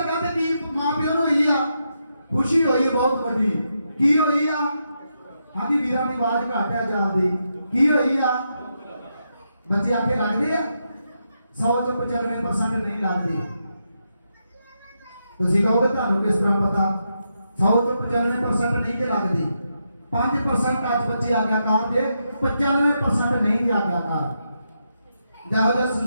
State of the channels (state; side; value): inverted; both; correlation -0.83